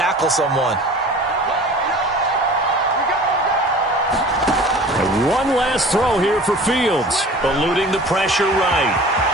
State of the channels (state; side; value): normal; both; correlation 0.43